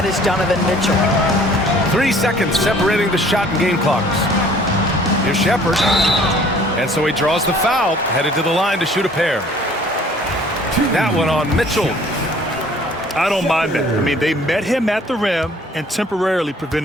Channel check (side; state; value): both; normal; correlation 0.54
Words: is Donovan Mitchell. 3 seconds separating the shot and game clocks. Here's Shepard. And so he draws the foul, headed to the line to shoot a pair. That one on Mitchell. I don't mind that. I mean, they met him at the rim and temporarily